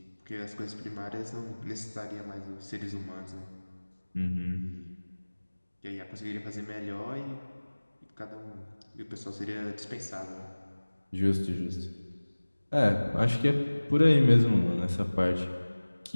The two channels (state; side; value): inverted; both; correlation -1.00